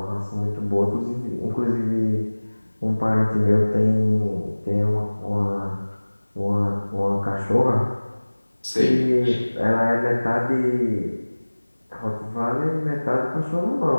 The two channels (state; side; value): inverted; both; correlation -1.00